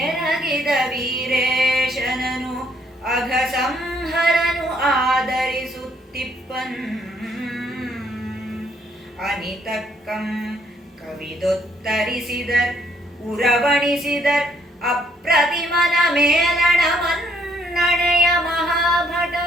ಎರಗಿದ ವೀರೇಶನನು ಅಘಸಂಹರನು ಆದರಿಸುತ್ತಿಪ್ಪನ್ ಅನಿತಕ್ಕಂ ಕವಿದೊತ್ತರಿಸಿದರ್ ಉರವಣಿಸಿದರ್ ಅಪ್ರತಿಮನ ಮೇಲಣ ಮನ್ನಣೆಯ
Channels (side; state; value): both; normal; correlation 0.68